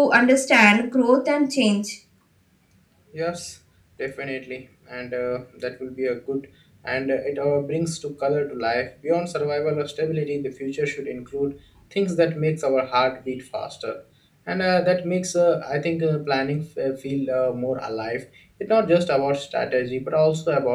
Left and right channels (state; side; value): identical; both; correlation 1.00